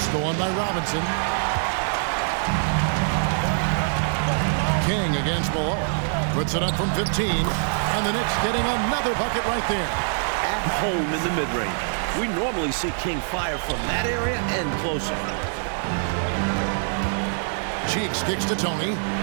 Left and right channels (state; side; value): silent; left; 60 dB below the other